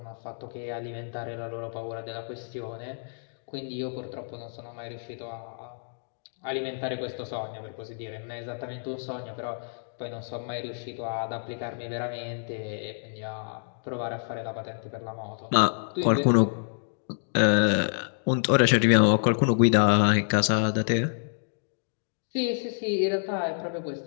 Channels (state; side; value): silent; right; digital silence